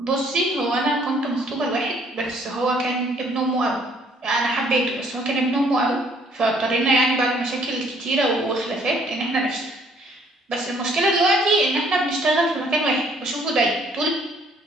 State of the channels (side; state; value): both; normal; correlation 0.62